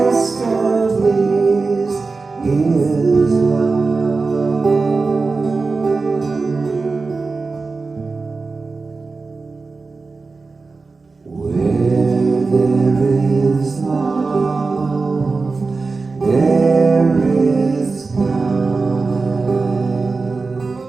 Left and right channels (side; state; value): left; quieter; 4.1 dB